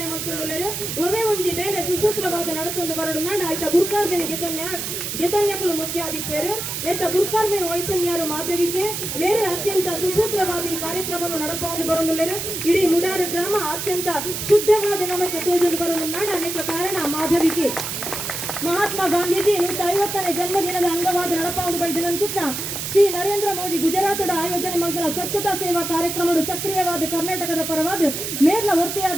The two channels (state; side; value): noise; right; hiss, 4 dB below the sound